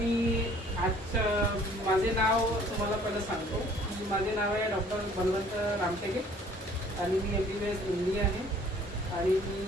माझे नाव तुम्हाला पहिलं सांगतो. माझे नाव आहे डॉक्टर बलवंत रामटेके आणि मी MBBS MD आहे आणि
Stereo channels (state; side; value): normal; both; correlation 0.55